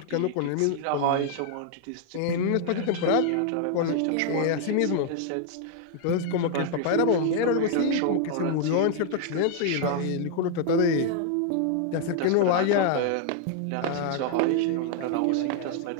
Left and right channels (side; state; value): both; different; correlation 0.00